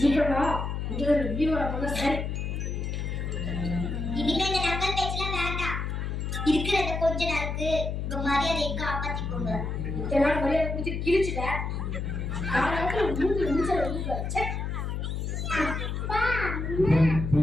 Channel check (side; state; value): left; noise; hum, 3 dB below the sound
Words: இங்க வீடியோல போங்க. சரி, இனிமே இந்த நக்கல் பேச்செல்லாம் வேண்டாம். இருக்கிறத கொஞ்ச நாளுக்கு உங்க மரியாதையை காப்பாத்திக்கோங்க. இத்தனை நாள் மரியாதை குடிச்சு கிழிச்சுட்டேன். காலத்துல மூணு நிமிஷம் வச்சு